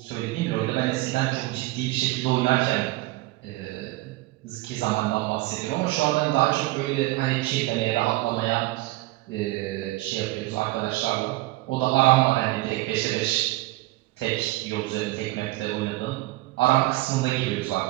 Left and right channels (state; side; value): quieter; left; 19.2 dB